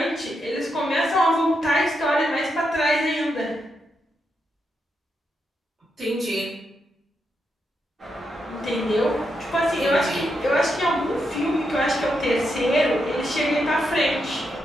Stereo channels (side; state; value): both; normal; correlation 0.83